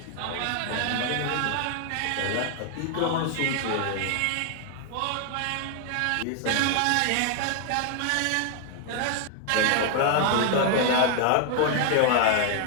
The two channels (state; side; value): different; both; correlation 0.00